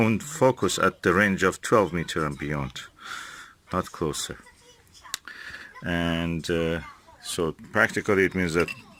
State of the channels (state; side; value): identical; both; correlation 1.00